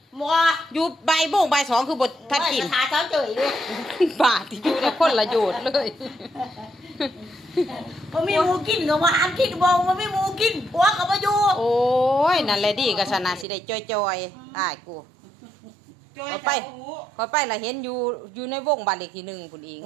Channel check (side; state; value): left; drops out; at 13.5 s